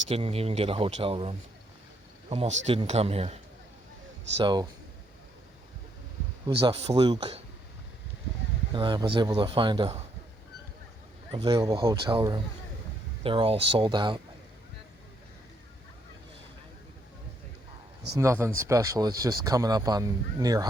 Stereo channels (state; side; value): normal; both; correlation 0.72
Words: didn't even get a hotel room. Almost didn't come here. So it was a fluke, and I was able to find a available hotel room. They're all sold out. It's nothing special. It's just coming up on near